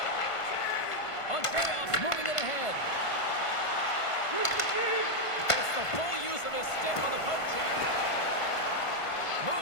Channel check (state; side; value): late; right; 1.5 ms